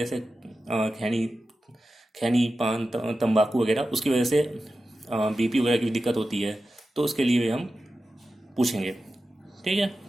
खैनी पान तंबाकू वगैरह, उसकी वजह से बीपी वगैरह की दिक्कत होती है, तो उसके लिए हम पूछेंगे। ठीक है,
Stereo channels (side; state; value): both; normal; correlation 0.93